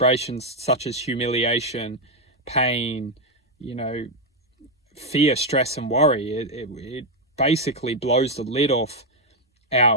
such as humiliation, pain, fear, stress, and worry. It basically blows the lid off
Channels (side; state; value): both; normal; correlation 0.03